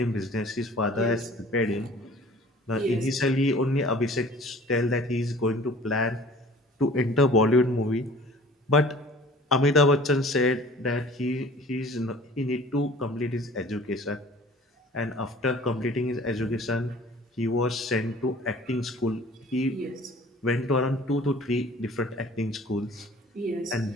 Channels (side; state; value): both; normal; correlation 0.48